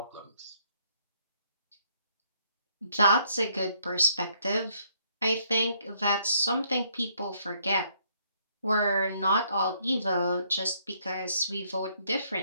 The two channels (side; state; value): both; inverted; correlation -0.69